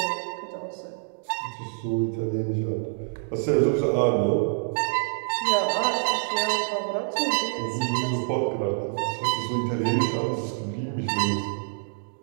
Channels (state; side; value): silent; left; digital silence